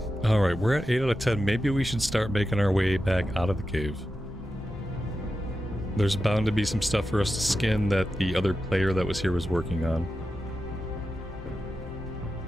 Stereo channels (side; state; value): both; normal; correlation 0.90